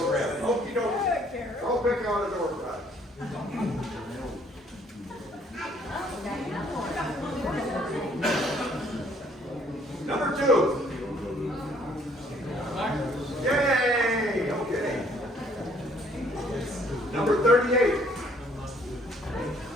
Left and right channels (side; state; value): both; normal; correlation 0.62